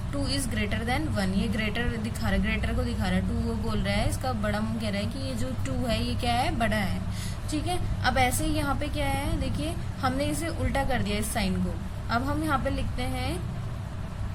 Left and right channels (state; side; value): identical; both; correlation 1.00